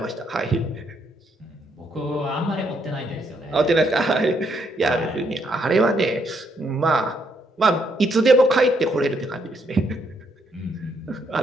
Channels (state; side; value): normal; both; correlation 0.73